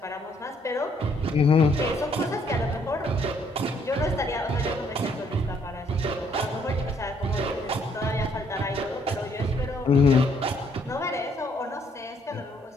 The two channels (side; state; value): both; normal; correlation 0.67